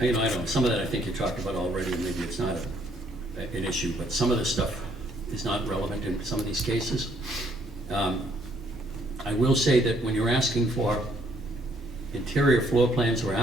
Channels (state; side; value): normal; both; correlation 0.67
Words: know, some of that I think you talked about already, and maybe it's not an issue, but some of this stuff is not relevant in some of these cases. I will say that when you're asking for interior floor plans are